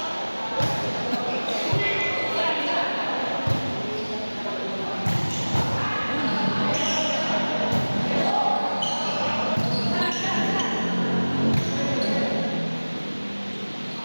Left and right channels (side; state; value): both; inverted; correlation -1.00